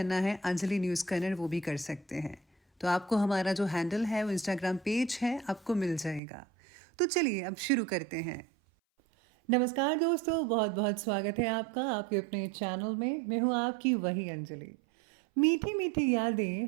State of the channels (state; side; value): drops out; left; at 6.2 s